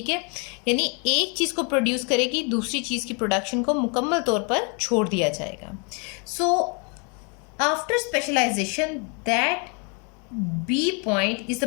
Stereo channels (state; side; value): quieter; right; 35.4 dB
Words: है, यानी एक चीज को प्रोड्यूस करेगी, दूसरी चीज की प्रोडक्शन को मुकम्मल तौर पर छोड़ दिया जाएगा। So after specialization that B point is